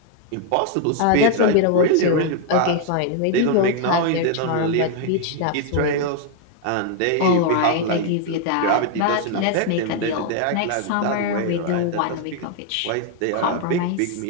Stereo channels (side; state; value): both; different; correlation 0.00